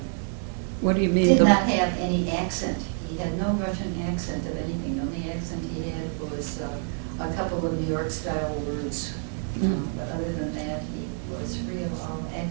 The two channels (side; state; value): left; silent; 57 dB below the other